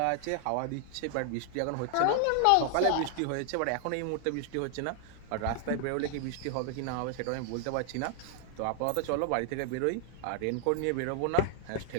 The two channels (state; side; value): different; both; correlation 0.00